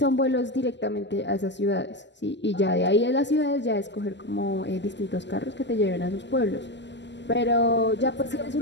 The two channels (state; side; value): late; right; 0.52 ms